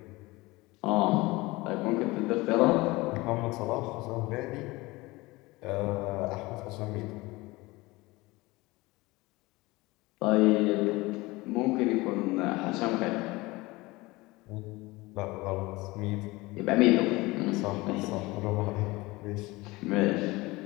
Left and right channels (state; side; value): quieter; right; 21.7 dB